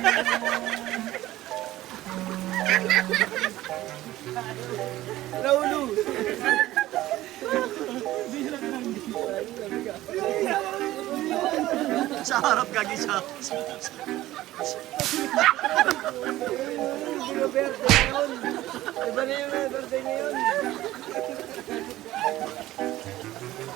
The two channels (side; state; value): left; quieter; 15.7 dB